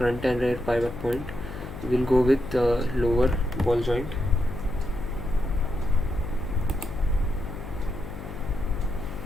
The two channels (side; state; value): left; noise; hum, 10 dB below the sound